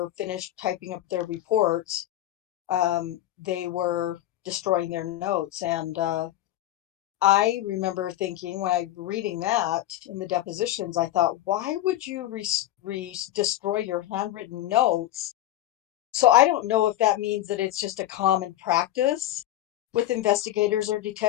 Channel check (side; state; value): right; quieter; 13.9 dB